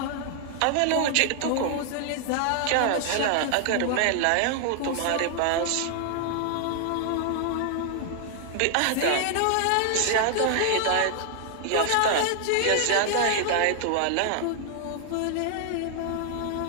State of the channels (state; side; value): different; both; correlation 0.00